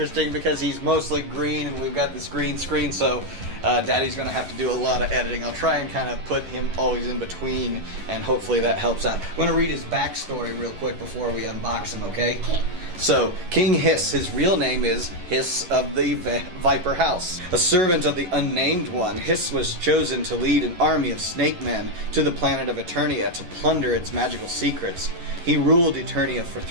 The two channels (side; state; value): left; late; 11 ms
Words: because he's mostly green and we've got this green screen, so Daddy's going to have to do a lot of editing. I'll try and kind of put him always in between, and hopefully that helps out. I'm going to read his backstory real quick before we unbox him, okay? Okay. So, King Hssss, his real name is Hssss of the Viper House. A servant of the Unnamed One, Hssss was chosen to lead an army of snake men to the planet of Eternia to plunder its magical secrets. He ruled Eternia for